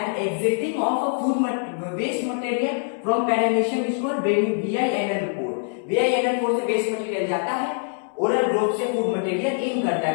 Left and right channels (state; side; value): silent; right; 63 dB below the other